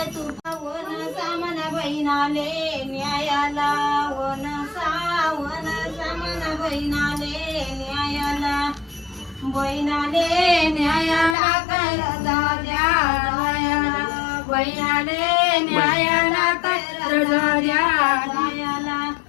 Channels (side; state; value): right; drops out; at 11.4 s